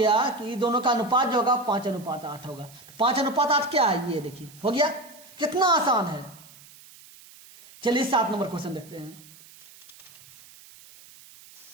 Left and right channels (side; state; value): right; noise; hiss, 22 dB below the sound